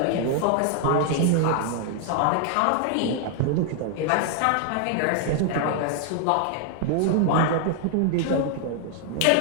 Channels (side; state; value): both; different; correlation 0.00